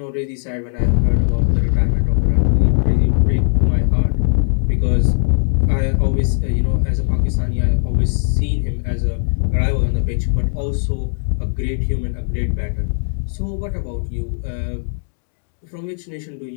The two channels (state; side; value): silent; right; digital silence